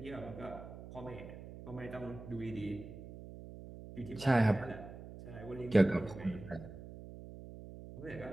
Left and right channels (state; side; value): noise; right; hum, 13 dB below the sound